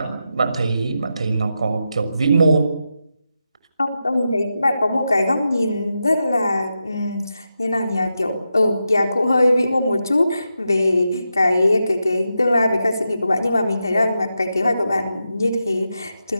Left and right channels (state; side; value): inverted; both; correlation -0.87